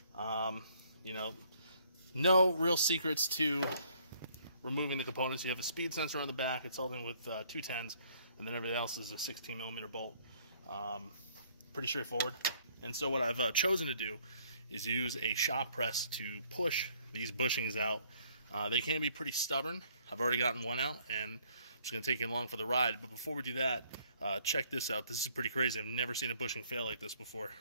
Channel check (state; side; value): inverted; both; correlation -0.63